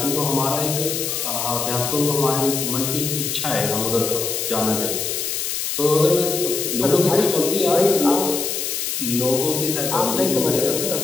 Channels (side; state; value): left; noise; hiss, 2 dB below the sound